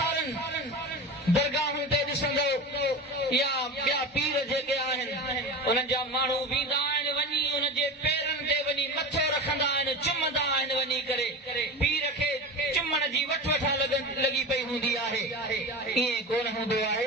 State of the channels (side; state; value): both; normal; correlation 0.27